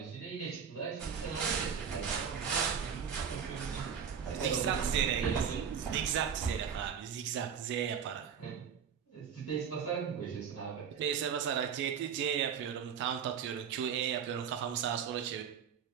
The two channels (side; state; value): left; quieter; 7.4 dB